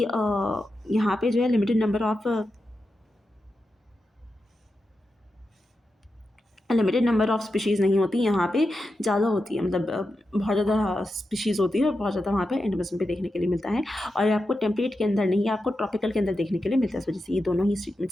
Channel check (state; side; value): normal; both; correlation 0.89